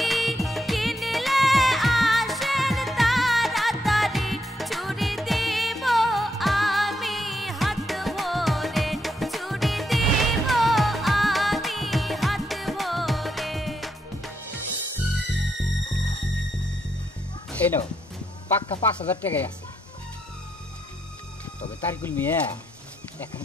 কিনলে আসেন তাড়াতাড়ি, চুরি দেব আমি হাত ভরে, চুরি দেব আমি হাত ভরে। এই নাও পাক্কা 5,000 টাকাই আছে। তবে তারিকুল মিয়া এখন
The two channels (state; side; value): normal; both; correlation 0.79